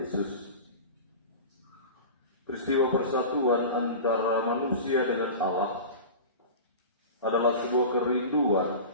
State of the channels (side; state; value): both; inverted; correlation -0.32